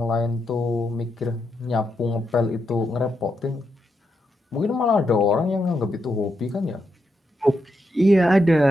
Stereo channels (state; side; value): normal; both; correlation 0.83